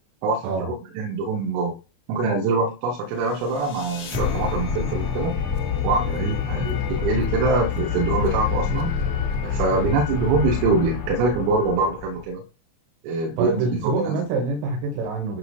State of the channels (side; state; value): left; late; 25 ms